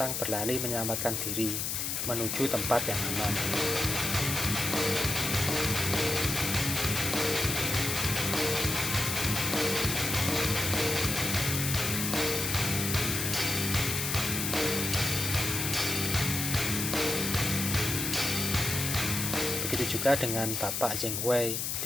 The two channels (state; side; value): noise; left; hiss, 1 dB below the sound